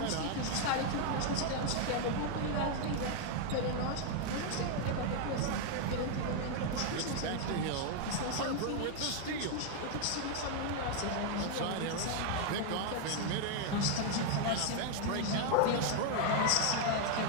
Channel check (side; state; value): both; different; correlation 0.01